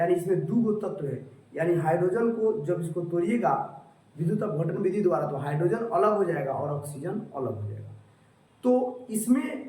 इसमें दो तत्व है। यानी हाइड्रोजन को जब इसको तोड़िएगा विद्युत अपघटन विधि द्वारा तो हाइड्रोजन अलग हो जाएगा और ऑक्सीजन अलग हो जाएगा। तो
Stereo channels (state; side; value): identical; both; correlation 1.00